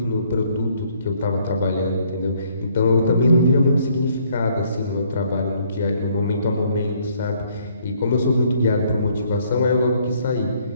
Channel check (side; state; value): both; inverted; correlation -0.65